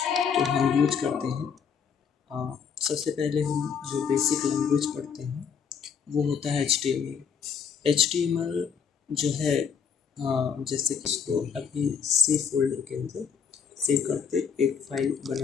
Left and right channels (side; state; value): right; quieter; 6.7 dB